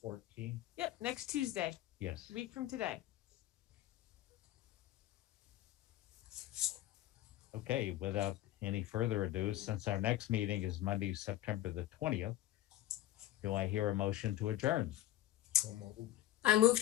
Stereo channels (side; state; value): right; quieter; 14.3 dB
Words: Yep, next Tuesday, yes. a week from today. Okay, without any further ado, since our next meeting is Monday, September the 20th, do I hear a motion to adjourn? So moved. I move